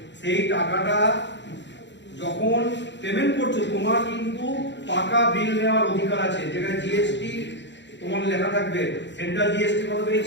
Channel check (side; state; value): right; late; 0.52 ms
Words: সেই টাকাটা যখন পেমেন্ট করছো তোমার কিন্তু পাকা বিল নেওয়ার অধিকার আছে, যেখানে জিএসটি তোমার লেখা থাকবে, সেন্ট্রাল জিএসটি কত